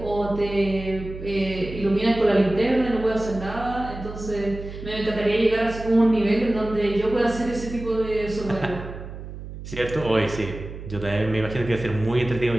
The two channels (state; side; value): noise; right; hum, 11 dB below the sound